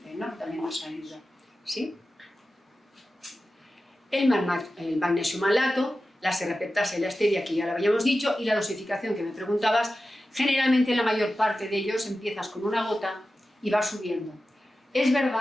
¿no? También nos ayuda, ¿sí? El magnesio malato, la serrapeptasa y la stevia, que ya lo habíamos dicho, y la dosificación que me preguntabas, generalmente la mayor parte de ellos empiezas con una gota y vas subiendo. Es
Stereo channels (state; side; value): normal; both; correlation 0.93